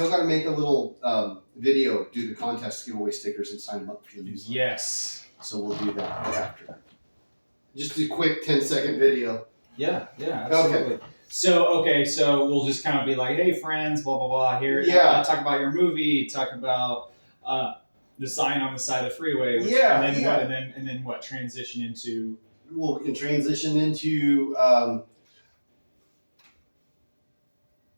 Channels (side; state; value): both; inverted; correlation -1.00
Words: got to make a little video, do the contest, give away stickers, and sign them up for the newsletter. Yes. So we'll do that after. Just a quick 10-second video. Yeah, absolutely. Okay. So we'll just kind of be like, hey, friends, blah, blah, blah. Here, talk about your movie, talk about the sign on the side of the freeway. And then what? Transition into... Well, we can transition into